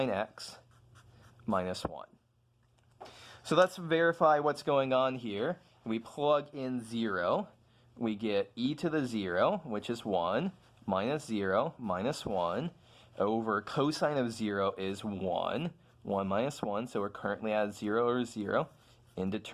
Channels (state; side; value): identical; both; correlation 1.00